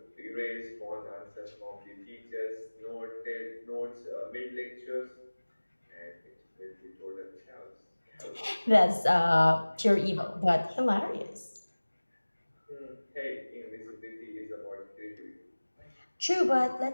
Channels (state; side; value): inverted; both; correlation -1.00